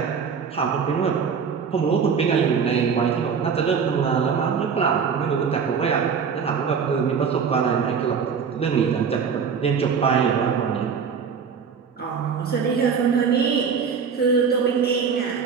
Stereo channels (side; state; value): left; quieter; 6.4 dB